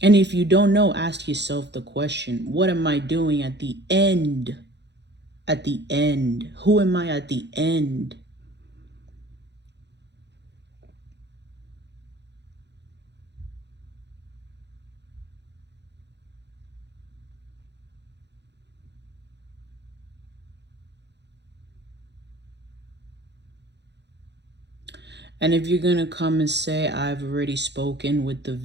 if you don't know, ask yourself the question, what am I doing at the end? At the end. Who am I at the end? And if you're going to come and say, I've already spoken with the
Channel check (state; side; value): late; left; 0.50 ms